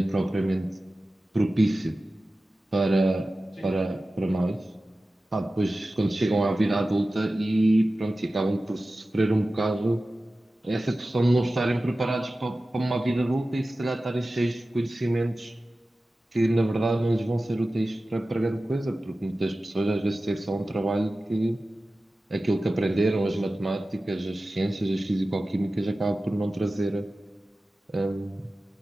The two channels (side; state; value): both; normal; correlation 0.95